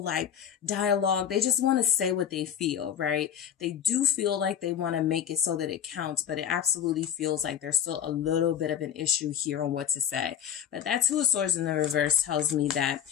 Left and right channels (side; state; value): right; quieter; 9.4 dB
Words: like dialogue. They just want to say what they feel, right? They do feel like they want to make it so that it counts, but it absolutely feels like there's still a little bit of an issue here on what to say. But that Two of Swords in the reverse tells me that